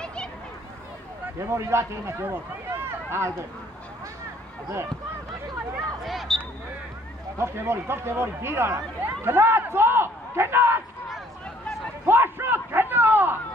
Devor ilaç elime devor. Aldı. Aldı. Top devor, bir ara. Kenat so! Kenat! Foşut, kenat!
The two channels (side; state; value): both; normal; correlation 0.60